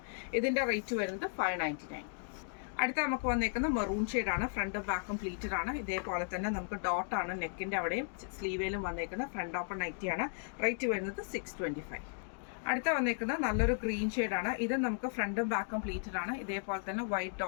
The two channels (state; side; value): silent; right; digital silence